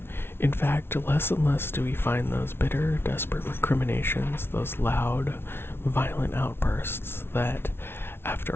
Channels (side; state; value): right; late; 0.11 ms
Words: In fact, less and less do we find those bitter, desperate recriminations, those loud, violent outbursts that,